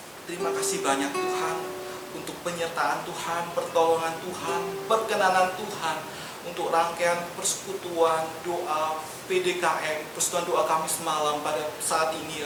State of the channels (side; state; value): both; identical; correlation 1.00